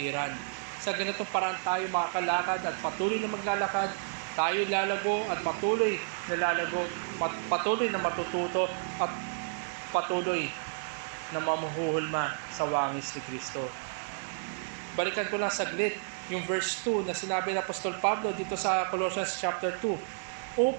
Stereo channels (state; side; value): silent; left; digital silence